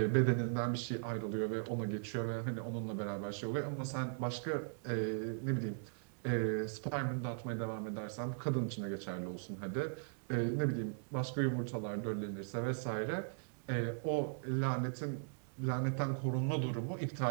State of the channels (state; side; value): silent; left; digital silence